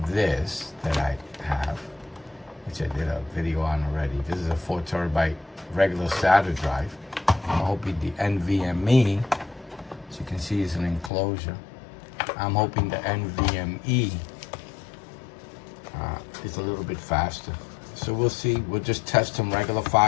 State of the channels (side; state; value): right; drops out; at 11.1 s